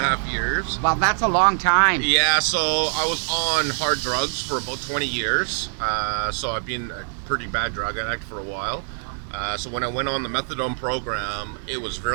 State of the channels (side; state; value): left; silent; digital silence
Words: years. Well, that's a long time. Yeah, so I was on hard drugs for about 20 years. So I've been a pretty bad drug addict for a while. So when I went on the methadone program, it was